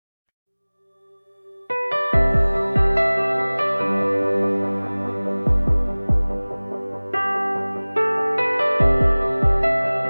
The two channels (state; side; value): inverted; both; correlation -1.00